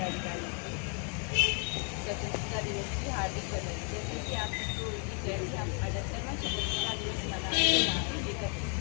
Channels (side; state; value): right; quieter; 38.5 dB